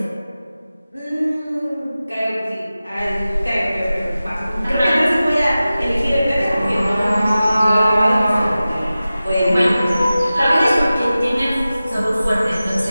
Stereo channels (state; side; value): inverted; both; correlation -0.95